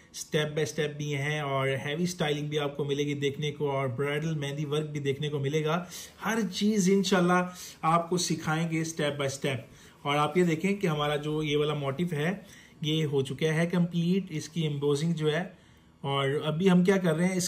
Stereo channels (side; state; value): both; identical; correlation 1.00